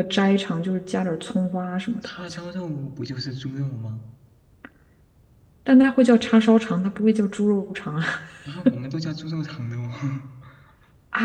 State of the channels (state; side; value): identical; both; correlation 1.00